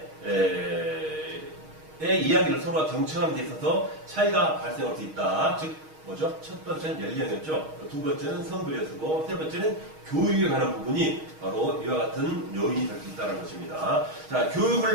이야기를 서로가 경청하는 데 있어서 차이가 발생할 수 있다. 즉, 뭐죠? 첫 번째는 연령이었죠. 두 번째는 성별이었고, 세 번째는 교육에 관한 부분이 바로 이와 같은 요인이 될 수 있다는 것입니다. 자,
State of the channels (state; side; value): late; left; 6.4 ms